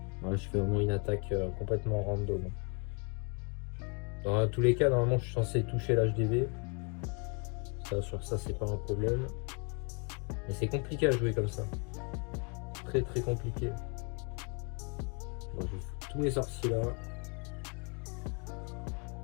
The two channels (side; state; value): right; quieter; 36.2 dB